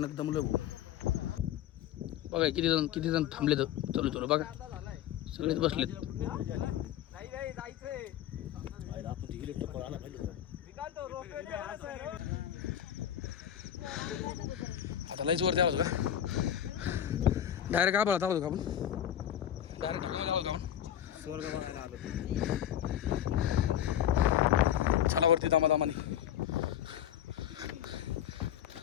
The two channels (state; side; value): quieter; right; 10.7 dB